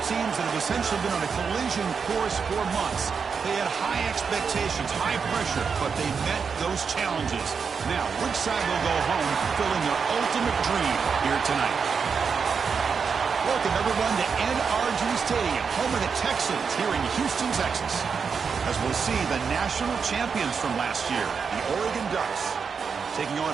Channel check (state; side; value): quieter; left; 5.9 dB